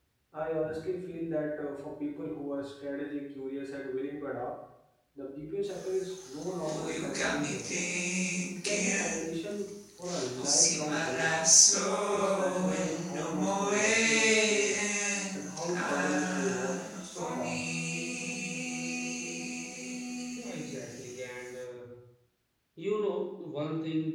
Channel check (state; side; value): identical; both; correlation 1.00